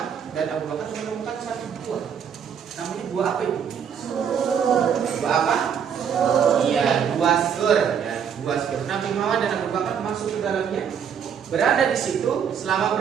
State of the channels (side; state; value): left; quieter; 7.7 dB